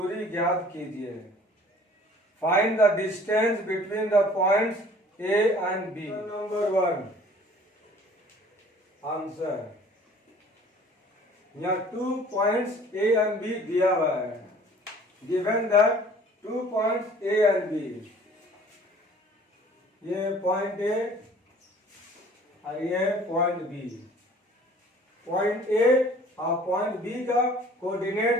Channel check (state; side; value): normal; both; correlation 0.51